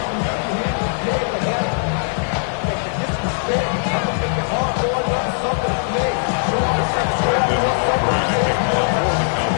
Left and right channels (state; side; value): silent; right; digital silence